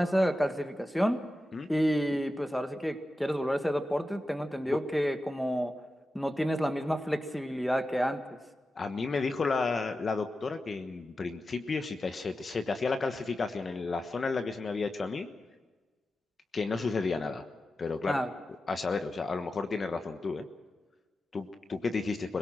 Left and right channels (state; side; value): normal; both; correlation 0.92